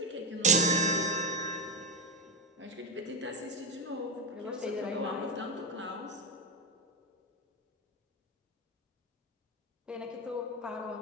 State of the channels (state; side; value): normal; both; correlation 0.09